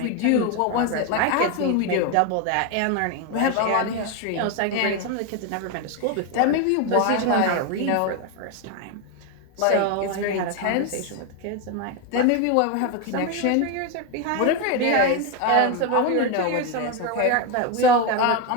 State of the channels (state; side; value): different; both; correlation 0.02